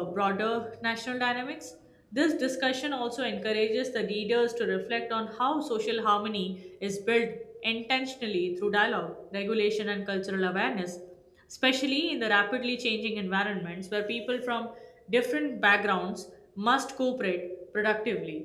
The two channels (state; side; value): identical; both; correlation 1.00